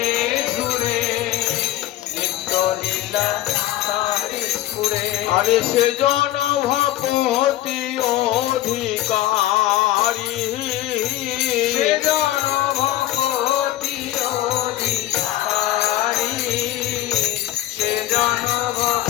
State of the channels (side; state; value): right; quieter; 14.7 dB